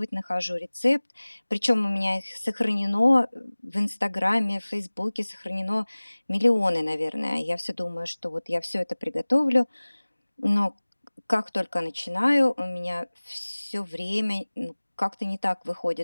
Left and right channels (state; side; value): inverted; both; correlation -1.00